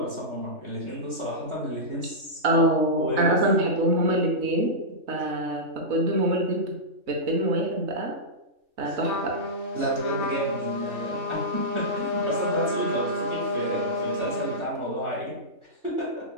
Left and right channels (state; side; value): late; left; 3.4 ms